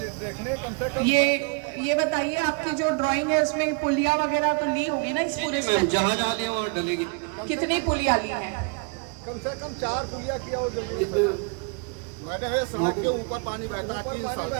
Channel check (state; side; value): quieter; left; 33.2 dB